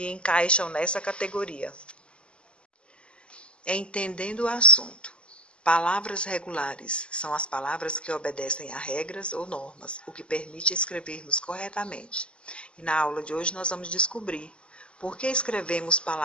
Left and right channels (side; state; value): right; late; 0.053 ms